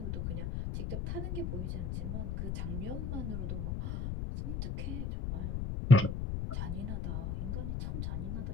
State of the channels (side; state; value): left; noise; rumble, 2 dB below the sound